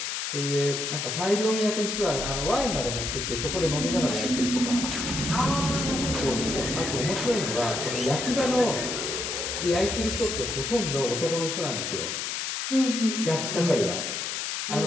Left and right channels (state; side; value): noise; left; hiss, 3 dB below the sound